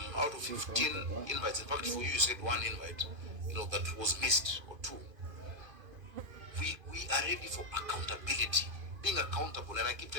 Out of 15 invites, in fact, for you, you said one invite, you know, that was missed, or two. We are ready for accountability, being accountable, and I keep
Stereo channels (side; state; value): left; late; 2.5 ms